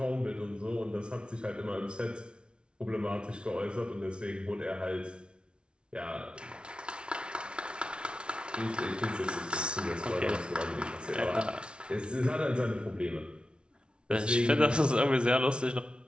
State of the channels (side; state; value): left; late; 0.057 ms